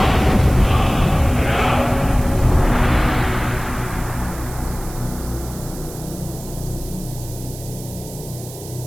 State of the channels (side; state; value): right; noise; hiss, 15 dB below the sound